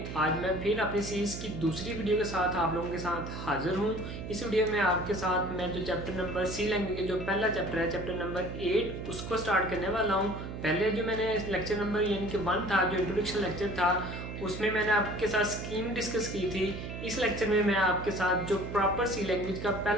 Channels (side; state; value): right; noise; hum, 8 dB below the sound